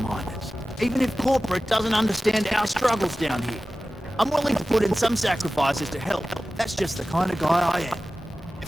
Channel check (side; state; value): both; normal; correlation 0.96